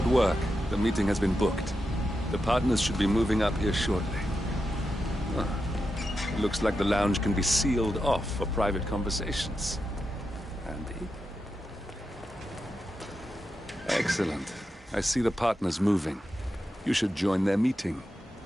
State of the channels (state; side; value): normal; both; correlation 0.88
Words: work. The meeting has been booked. The partners should be moving up here shortly. Looks like the lounge can be sealed off for private conversations. Handy. Excellent. I see the partners moving. You should join their meeting.